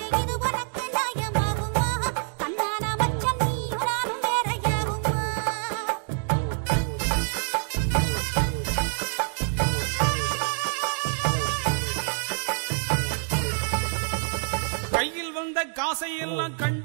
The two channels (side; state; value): left; silent; 60 dB below the other